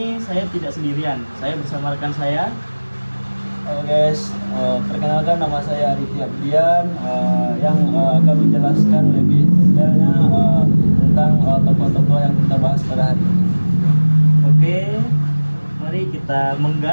saya tidak sendirian, saya bersama rekan saya. Halo guys, perkenalkan nama saya Arifi Abdian yang akan menjelaskan lebih detailnya tentang tokoh-tokoh yang kita bahas pada hari ini. Oke, mari kita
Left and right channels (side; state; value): both; inverted; correlation -1.00